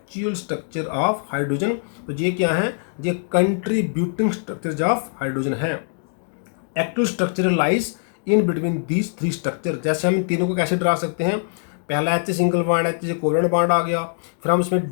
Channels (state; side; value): silent; right; digital silence